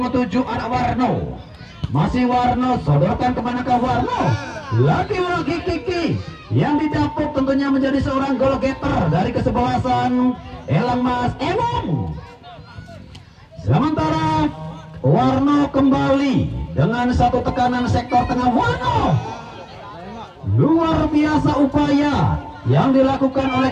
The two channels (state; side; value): identical; both; correlation 1.00